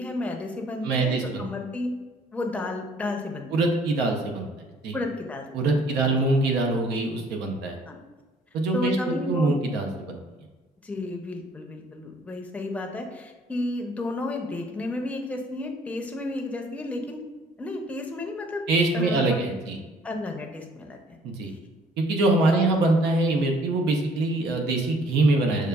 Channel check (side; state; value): both; normal; correlation 0.59